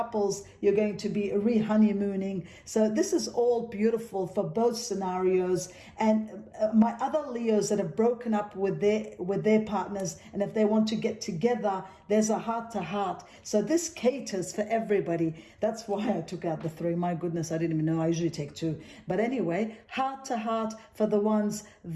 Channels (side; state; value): both; identical; correlation 1.00